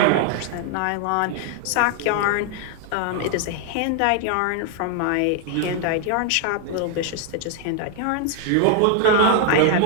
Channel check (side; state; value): both; different; correlation 0.00